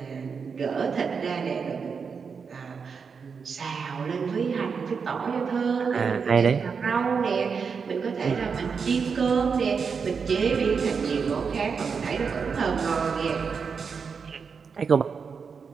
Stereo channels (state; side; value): quieter; left; 5.8 dB